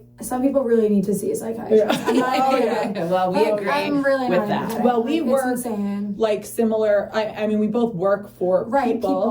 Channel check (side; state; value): both; identical; correlation 1.00